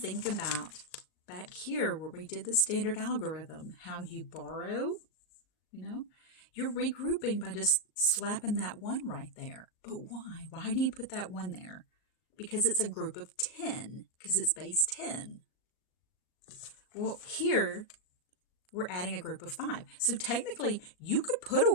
about back here where we did the standard algorithm, how you borrow, you're regrouping by just slapping that 1 right there. But why? Why do you put that 1 there? Because it's a group of 10, because it's base 10. Well, here we're adding a group of 5. So technically, you could put a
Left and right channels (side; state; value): right; late; 38 ms